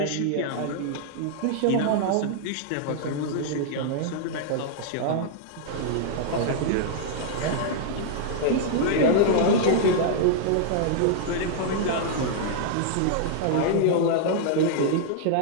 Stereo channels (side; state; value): both; different; correlation -0.01